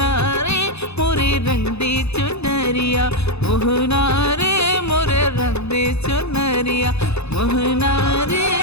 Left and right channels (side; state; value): right; late; 0.80 ms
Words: रे मोरे रंग दे चुनरिया, मोहना रे मोरे रंग दे चुनरिया, मोहना रे